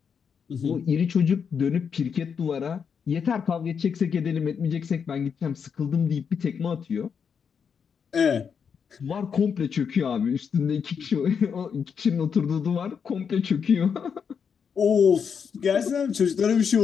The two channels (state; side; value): quieter; right; 6.7 dB